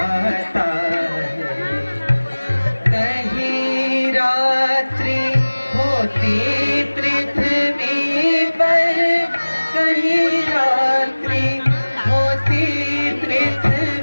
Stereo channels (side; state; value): both; inverted; correlation -1.00